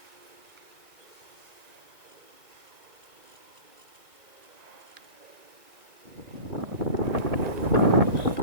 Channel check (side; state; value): left; late; 1.9 ms